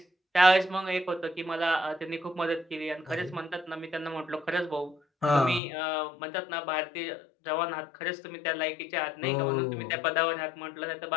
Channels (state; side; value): drops out; right; at 5.6 s